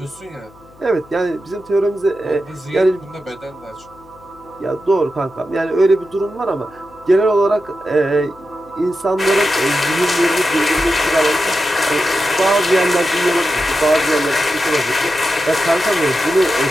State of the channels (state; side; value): noise; left; hum, 26 dB below the sound